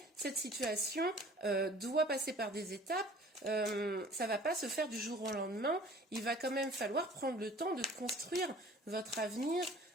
cette situation doit passer par des étapes. Ça ne va pas se faire du jour au lendemain. Il va quand même falloir prendre le temps de construire votre avenir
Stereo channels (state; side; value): normal; both; correlation 0.49